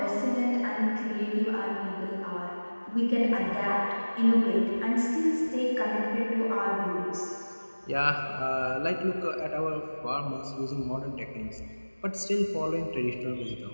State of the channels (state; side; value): inverted; both; correlation -1.00